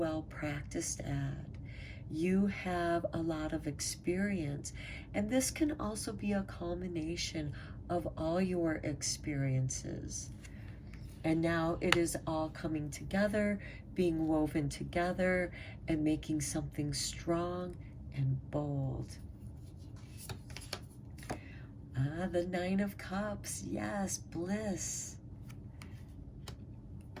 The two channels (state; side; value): identical; both; correlation 1.00